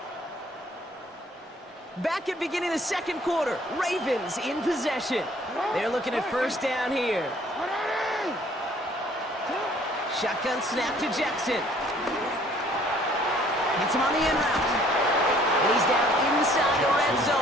Back at beginning of the 2nd quarter, Ravens in possession. They're looking at 1st down here. Shotgun snap to Jackson. Hits him on the end route. And he's down inside the red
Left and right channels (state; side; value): normal; both; correlation 0.58